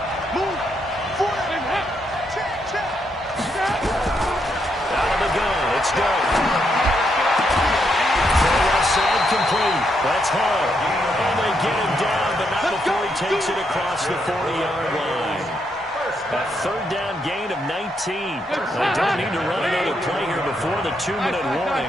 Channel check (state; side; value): normal; both; correlation 0.78